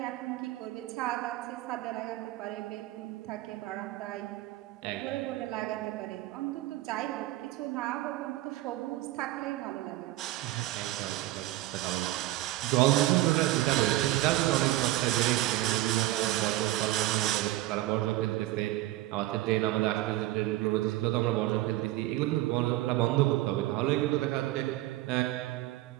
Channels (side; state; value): left; quieter; 16.5 dB